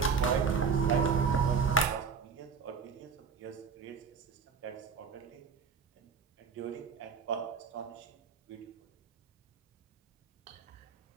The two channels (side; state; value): left; quieter; 5.7 dB